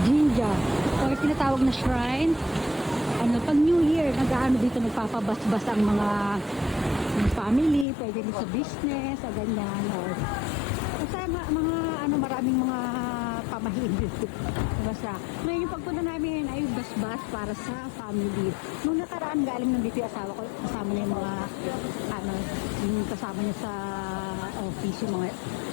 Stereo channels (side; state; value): right; drops out; at 7.9 s